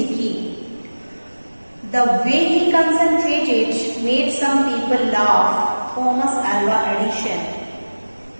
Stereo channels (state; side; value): inverted; both; correlation -1.00